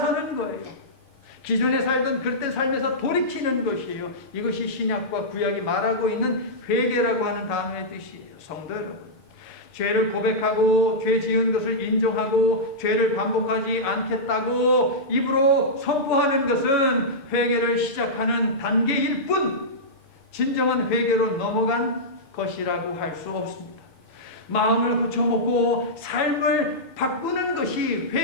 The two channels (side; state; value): right; late; 7.3 ms